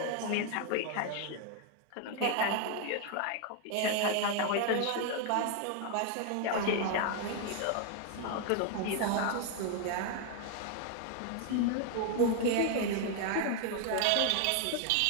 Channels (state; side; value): different; both; correlation 0.00